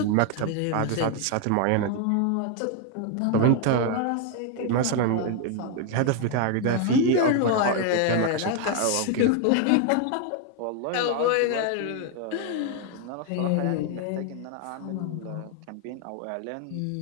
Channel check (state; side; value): different; both; correlation 0.00